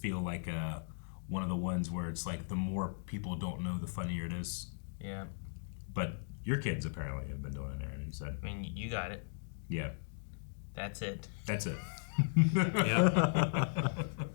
like one of the ones where it's like the more people don't know, the funnier it is. Yeah. But your kids apparently have been doing it, Aaron. You said. I mean, you got it. Yeah. That's it. That's it. Yeah.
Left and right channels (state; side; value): silent; right; digital silence